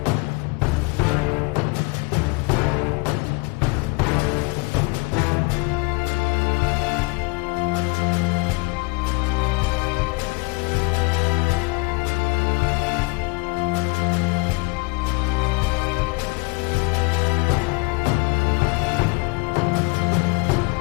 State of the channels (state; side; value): quieter; right; 28.4 dB